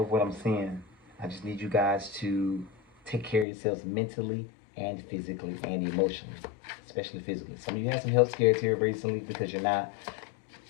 what I'm seeing. I just need you guys to take care of yourselves mentally and physically and emotionally, especially physically. Some of you had some health scares here recently because you're not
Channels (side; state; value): right; drops out; at 3.5 s